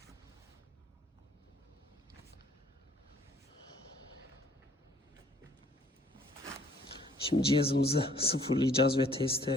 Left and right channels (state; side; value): normal; both; correlation 0.59